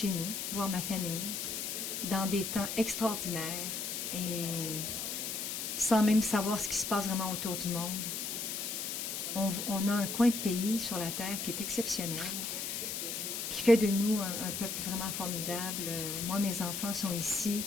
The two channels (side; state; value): left; noise; hiss, 3 dB below the sound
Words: nous, voir ma famille, dans des temps extraordinaires et sans même savoir ce qui se passe vraiment autour du monde. On a un coin de pays sur la Terre qui est exceptionnel, qui fait de nous un peuple vraiment formidable. Moi, mes enfants sont ici,